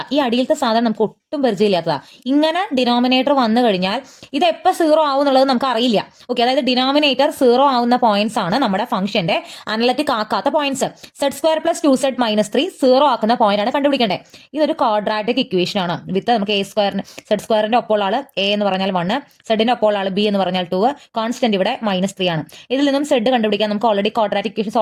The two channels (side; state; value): both; identical; correlation 1.00